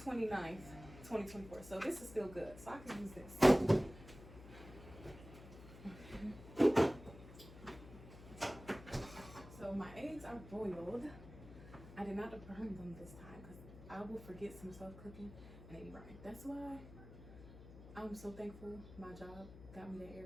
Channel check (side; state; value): left; noise; hum, 16 dB below the sound